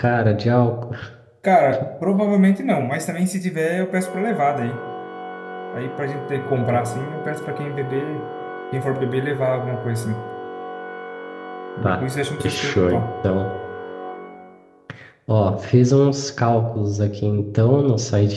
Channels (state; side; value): identical; both; correlation 1.00